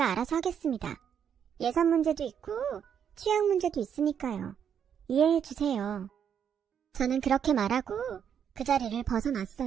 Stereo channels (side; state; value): left; quieter; 8.2 dB